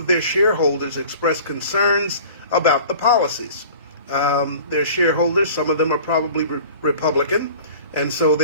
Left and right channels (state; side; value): inverted; both; correlation -0.44